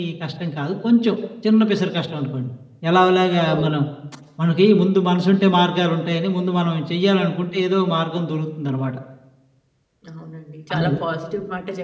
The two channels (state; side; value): identical; both; correlation 1.00